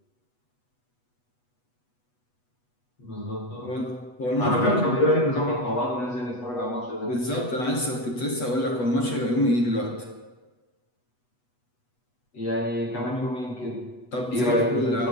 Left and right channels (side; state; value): right; late; 8.1 ms